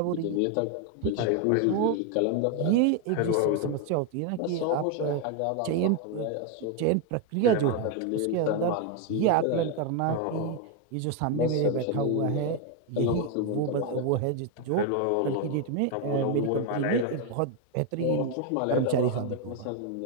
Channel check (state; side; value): different; both; correlation 0.01